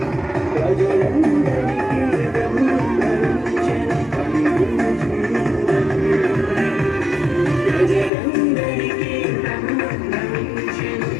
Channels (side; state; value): right; drops out; at 8.1 s